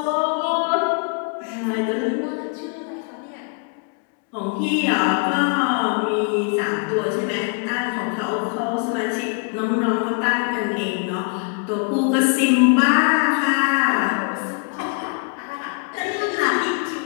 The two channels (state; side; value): quieter; right; 37.8 dB